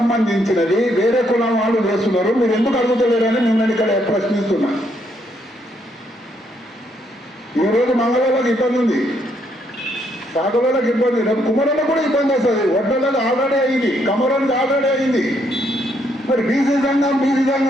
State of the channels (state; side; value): normal; both; correlation 0.73